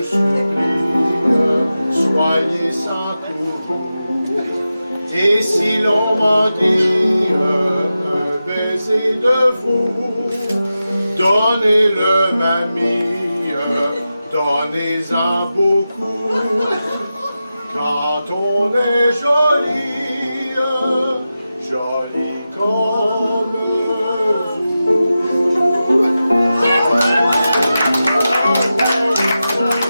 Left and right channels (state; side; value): inverted; both; correlation -0.92